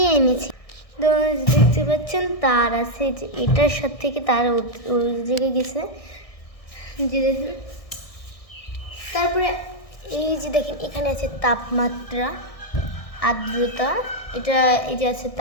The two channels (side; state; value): right; late; 1.6 ms